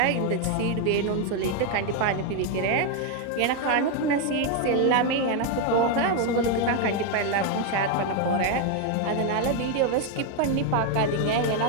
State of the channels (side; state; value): both; different; correlation 0.01